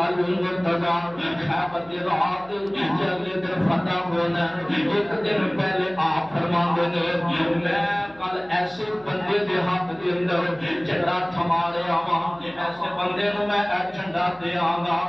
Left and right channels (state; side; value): noise; left; hum, 27 dB below the sound